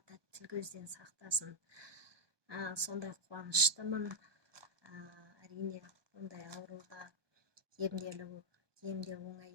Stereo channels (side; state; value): left; late; 1.2 ms